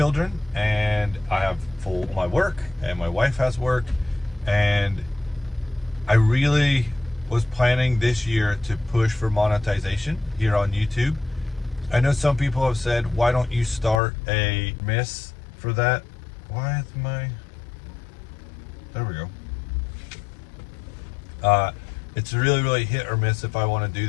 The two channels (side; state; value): right; drops out; at 14.0 s